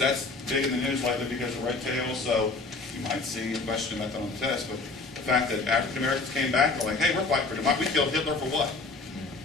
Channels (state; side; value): quieter; right; 3.7 dB